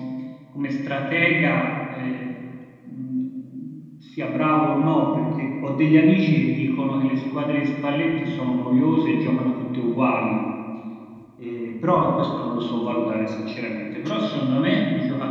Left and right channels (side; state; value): both; identical; correlation 1.00